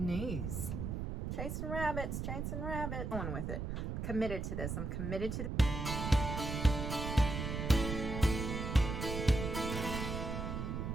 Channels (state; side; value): noise; right; rumble, 3 dB below the sound